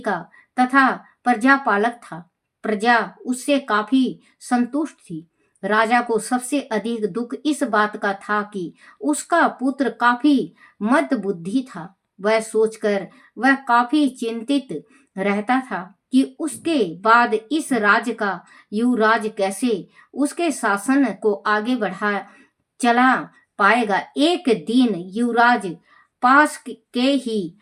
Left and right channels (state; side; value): identical; both; correlation 1.00